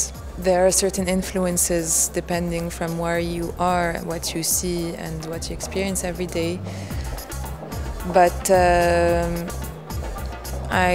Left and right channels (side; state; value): both; identical; correlation 1.00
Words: there are certain influences depending from where you are, what you see and what you experience every day. But